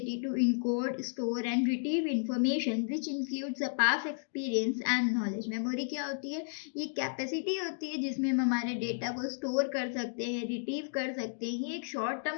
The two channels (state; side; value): silent; right; digital silence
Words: to encode, store and retrieve information which includes the past experience and knowledge. Memory क्या होती है? ये कैपेसिटी होती है जिसमें हम हमारे डेटा को स्टोर कर सकते हैं, रिट्रीव कर सकते हैं। ये एक शॉर्ट